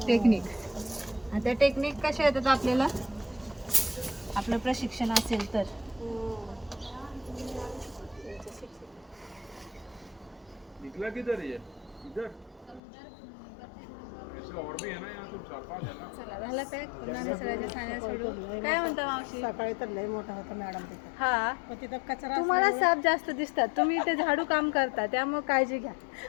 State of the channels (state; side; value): drops out; right; at 12.8 s